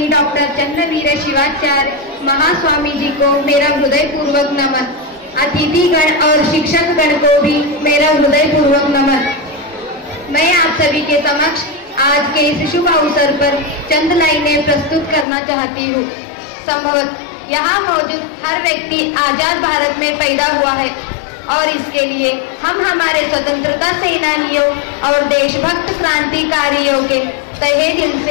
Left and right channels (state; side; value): drops out; right; at 15.2 s